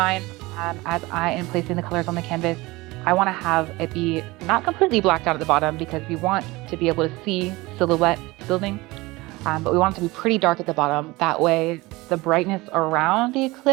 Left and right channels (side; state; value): left; quieter; 21.6 dB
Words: as I am placing the colors on the canvas, I want to have it be not completely blacked out at the bottom because we want to be able to see silhouette building, but we want it to be pretty dark at the bottom. That way the brightness around the